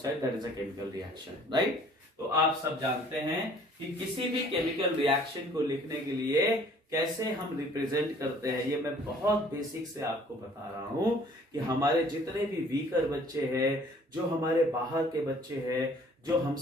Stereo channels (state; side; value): normal; both; correlation 0.55